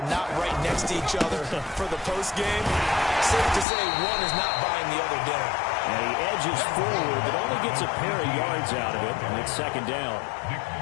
not right next to each other for the postgame. Safe to say one is not buying the other dinner. And he edges forward, but only gets a pair of yards out of it, and it's second down.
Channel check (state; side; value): drops out; right; at 3.7 s